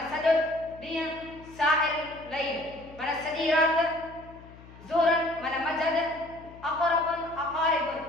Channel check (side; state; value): left; noise; hum, 20 dB below the sound